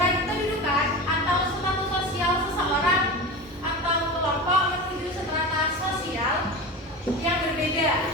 kedudukan atau status sosial seseorang atau kelompok menuju strata sosial yang berbeda,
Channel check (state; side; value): normal; both; correlation 0.27